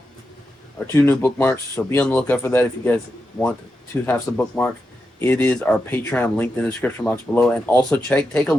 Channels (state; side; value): normal; both; correlation 0.87